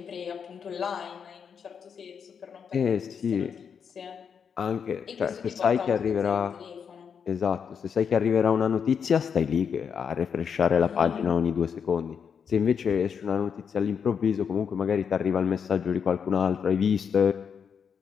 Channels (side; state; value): right; quieter; 6.9 dB